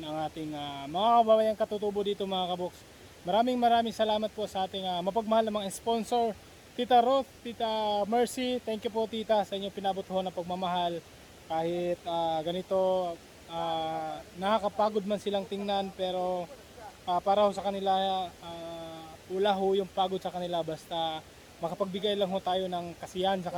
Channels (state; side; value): identical; both; correlation 1.00